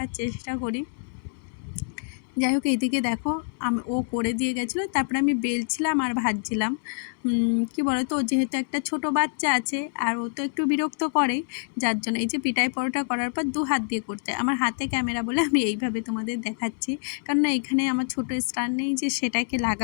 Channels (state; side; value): silent; right; 61 dB below the other